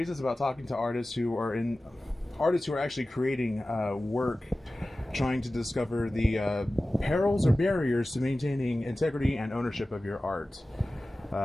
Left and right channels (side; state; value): both; normal; correlation 0.96